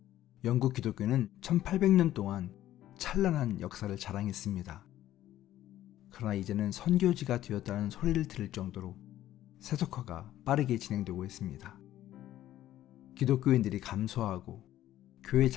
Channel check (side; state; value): right; quieter; 13.3 dB